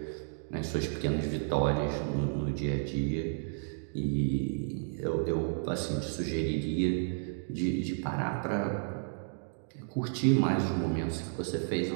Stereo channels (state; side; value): silent; left; digital silence